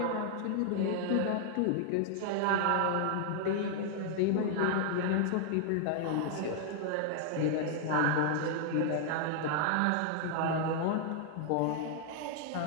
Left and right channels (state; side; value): different; both; correlation 0.00